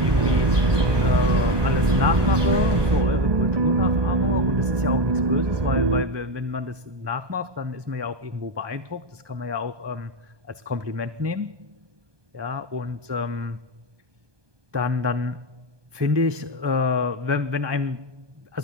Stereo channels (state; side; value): late; left; 1.2 ms